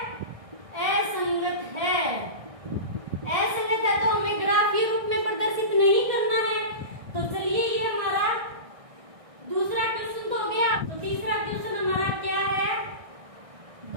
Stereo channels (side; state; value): left; late; 1.6 ms